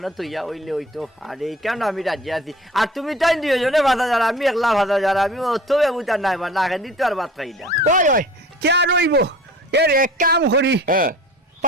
তৈয়া হইলে হইতো আর এই কেন আমি রাজি আছি আর তুমি তাই 2জনে 5,000 আমি একলা 5,000 আমি অত ব্যবধান নাই বা না দিতে আর বাদ খাই না ওই কে রইব এর এক কাম করি হ্যাঁ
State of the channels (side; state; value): both; normal; correlation 0.43